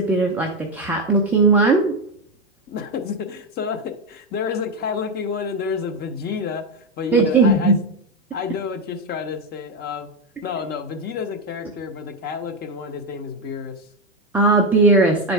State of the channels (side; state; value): both; normal; correlation 0.09